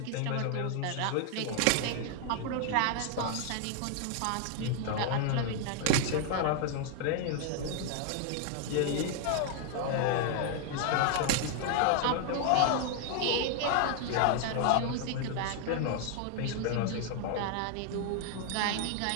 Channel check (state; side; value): different; both; correlation 0.00